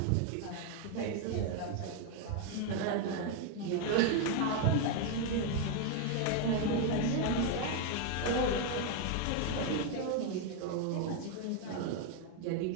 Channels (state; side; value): different; both; correlation 0.01